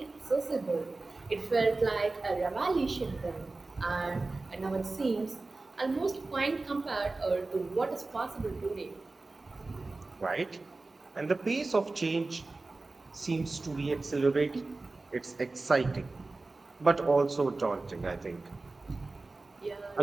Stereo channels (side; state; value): left; quieter; 3.4 dB